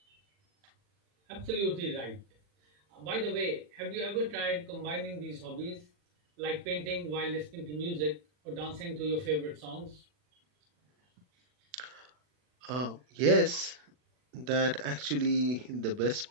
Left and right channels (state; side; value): late; left; 40 ms